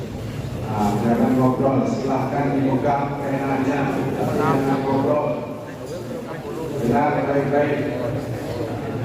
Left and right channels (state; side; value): identical; both; correlation 1.00